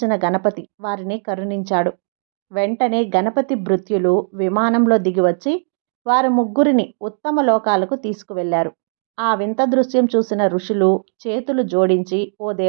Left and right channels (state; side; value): silent; left; digital silence